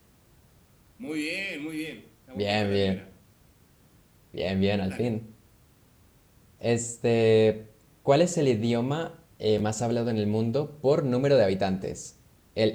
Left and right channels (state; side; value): identical; both; correlation 1.00